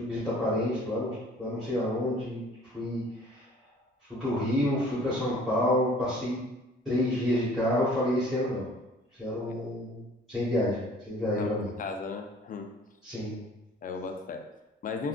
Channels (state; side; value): normal; both; correlation 0.52